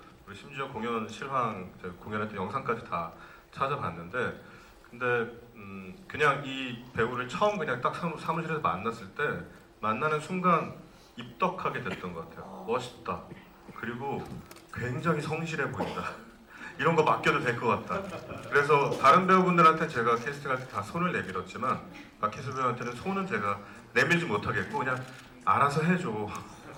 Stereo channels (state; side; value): identical; both; correlation 1.00